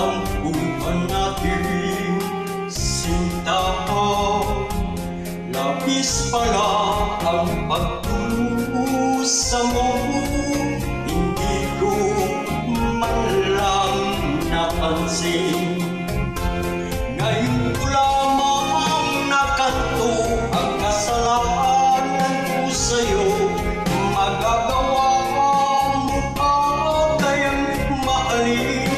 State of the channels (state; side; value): identical; both; correlation 1.00